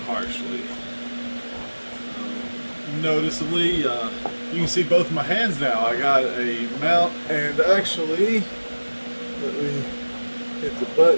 harshly. Noticeably, you can see both my hands now. I got a mount, and actually, let me hit the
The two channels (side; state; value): both; inverted; correlation -1.00